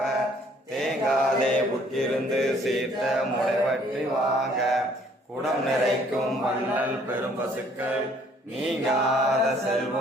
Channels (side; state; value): both; normal; correlation 0.61